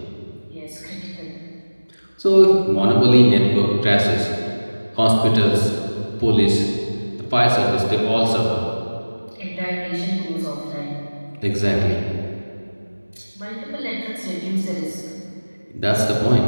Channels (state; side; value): inverted; both; correlation -1.00